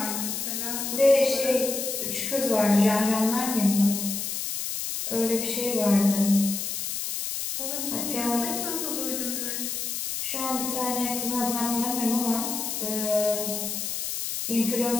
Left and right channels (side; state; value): left; noise; hiss, 3 dB below the sound